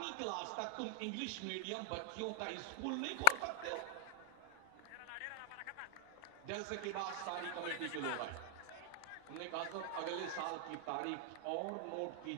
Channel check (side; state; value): both; different; correlation -0.01